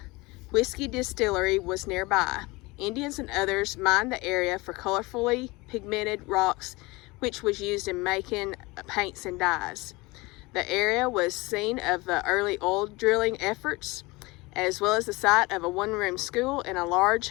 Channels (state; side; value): quieter; right; 23.3 dB